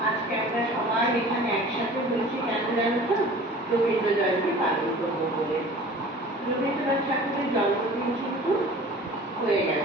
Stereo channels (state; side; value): normal; both; correlation 0.44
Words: আজকে আমরা সবাই এখানে একসাথে হয়েছি কেন জানো তো? রবীন্দ্র জয়ন্তী পালন করবো বলে। রবীন্দ্রনাথ ঠাকুরের জন্মদিন কিন্তু হয়ে